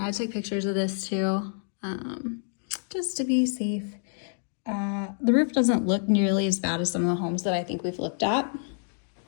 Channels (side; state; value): right; silent; digital silence